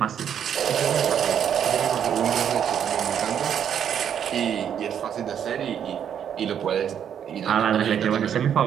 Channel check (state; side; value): quieter; left; 8.8 dB